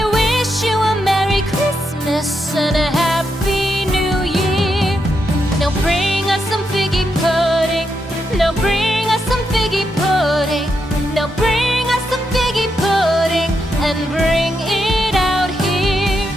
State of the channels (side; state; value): both; normal; correlation 0.82